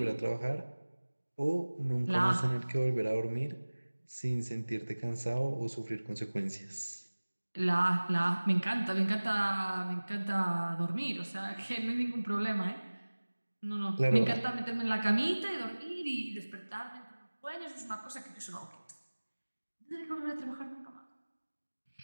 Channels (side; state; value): both; inverted; correlation -1.00